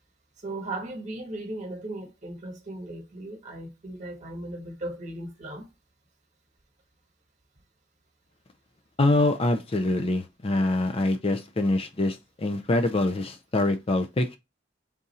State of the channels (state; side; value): normal; both; correlation 0.69